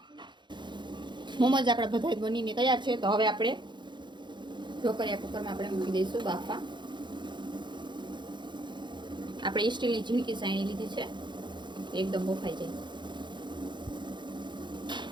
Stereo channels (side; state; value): left; late; 0.22 ms